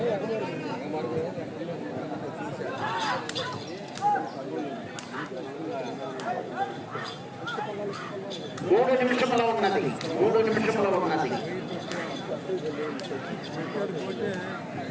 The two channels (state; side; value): identical; both; correlation 1.00